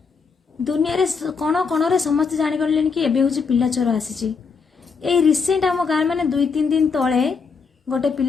दुनिया रे कोण कोण समस्त जानी गले कि एबे हूँ पिला चोर आसी ए रिसेंट आम गाँव मैंने 2-3 दिन तले गोटे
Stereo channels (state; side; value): quieter; right; 5.2 dB